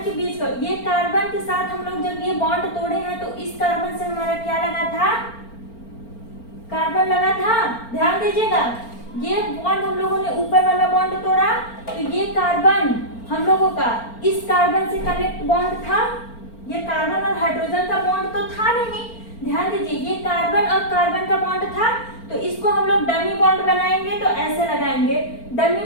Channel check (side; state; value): right; late; 4.4 ms